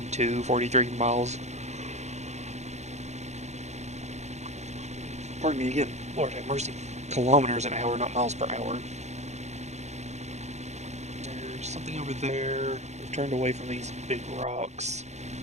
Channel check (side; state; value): left; late; 0.33 ms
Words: 43 miles. Pardon me again, Lord have mercy. Kilometers an hour, not miles per hour. There's something over there. We've turned away from these big rocks,